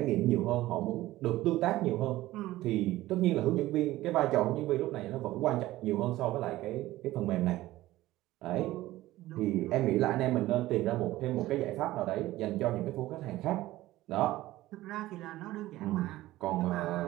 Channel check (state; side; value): quieter; left; 16.5 dB